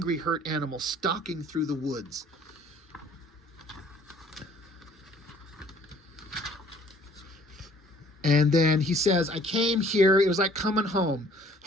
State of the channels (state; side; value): normal; both; correlation 0.56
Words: hurt animal stalking through the woods. And then he says, I came here. It was like coming home.